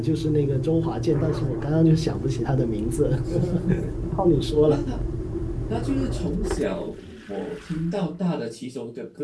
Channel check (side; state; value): both; identical; correlation 1.00